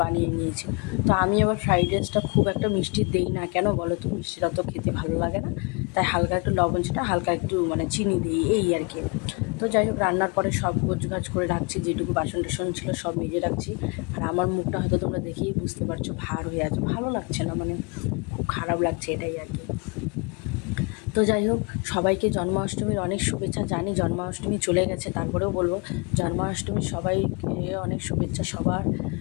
বানিয়ে নিয়েছি। তো আমি আবার ফ্রাইড রাইসটা খুব একটা মিষ্টি দেই না, কেন বলো তো? মিষ্টিটা তো খেতে ভালো লাগে না, তাই হালকা একটু লবণ ছিটা, হালকা একটু মানে চিনি দিই, এই আর কি। তো যাই হোক, রান্নার পরে সব গোছগাছ করে রাখছি, যেটুকু বাসন টাসন ছিল সব মেজে রাখছি। আর আমার মুখটা হয়তো তোমরা দেখেই বুঝতে পারছো ভার হয়ে আছে, ভালো লাগছে না, মানে খুব খারাপ লাগছে, এটাই আর কি। তো যাই হোক, সবাইকে জন্মাষ্টমীর অনেক শুভেচ্ছা। জানি জন্মাষ্টমী চলে গেছে, তারপরেও বলবো জন্মাষ্টমীর সবাইকে অনেক শুভেচ্ছা। সবার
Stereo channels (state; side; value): quieter; right; 31.8 dB